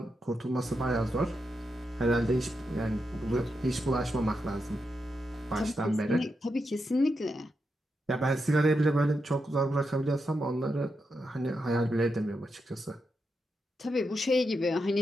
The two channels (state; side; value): normal; both; correlation 0.85